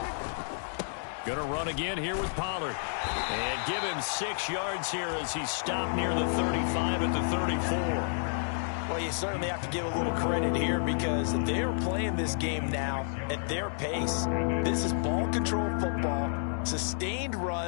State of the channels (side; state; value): right; silent; digital silence